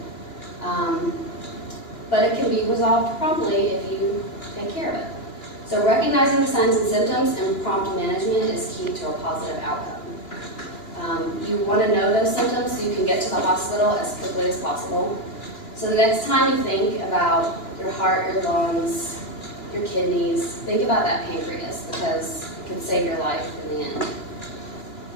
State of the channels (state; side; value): late; right; 2.9 ms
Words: But it can be resolved promptly if you take care of it. So recognizing the signs and symptoms and prompt management is key to a positive outcome. You want to know those symptoms so you can get to the hospital as quickly as possible. So the next time you think about your heart, your lungs, your kidneys, think about that pancreas because it can save your life in the end.